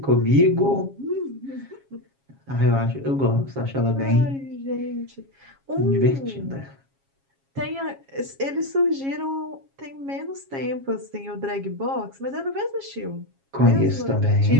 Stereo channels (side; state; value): left; late; 7.3 ms